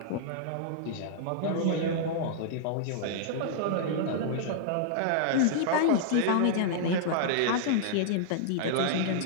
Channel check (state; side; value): different; both; correlation -0.01